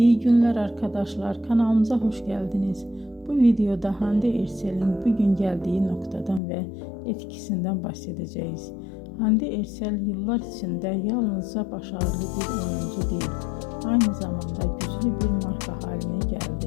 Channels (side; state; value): right; drops out; at 6.4 s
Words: günler arkadaşlar, kanalımıza hoş geldiniz. Bu videoda Hande Erçel'in bugün geldiği noktadan ve etkisinden bahsedeceğiz. Hande Erçel yıllar içinde yalnızca başarılı bir oyuncu değil, aynı zamanda güçlü bir marka haline